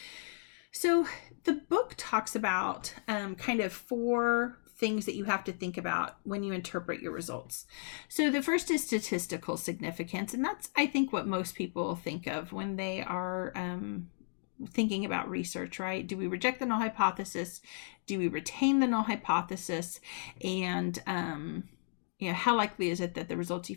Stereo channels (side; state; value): right; silent; digital silence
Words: So the book talks about kind of 4 things that you have to think about when you interpret your results. So the first is statistical significance, and that's, I think, what most people think of when they are thinking about research, right? Do we reject the null hypothesis? Do we retain the null hypothesis? And how likely is it that the results you